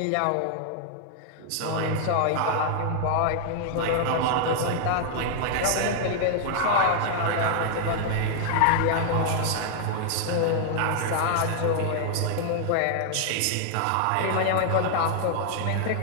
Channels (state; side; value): different; both; correlation 0.00